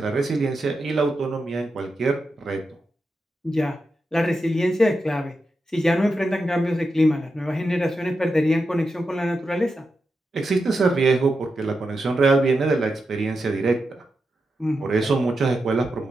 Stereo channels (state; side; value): normal; both; correlation 0.88